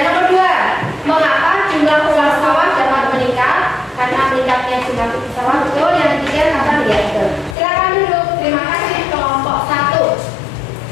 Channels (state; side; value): drops out; right; at 7.6 s